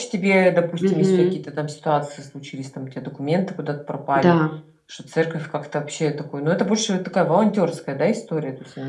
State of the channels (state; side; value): identical; both; correlation 1.00